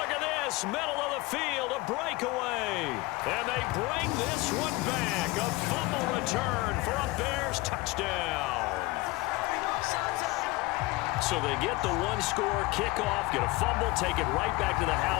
at this, middle of the field, a breakaway. And they bring this one back. A fumble return for a Bears touchdown. So they get the 1-score kickoff, get a fumble, take it right back to the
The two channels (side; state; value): right; quieter; 21.6 dB